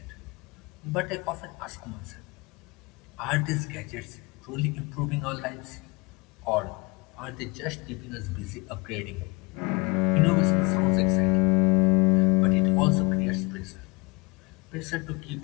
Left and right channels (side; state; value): right; quieter; 27.6 dB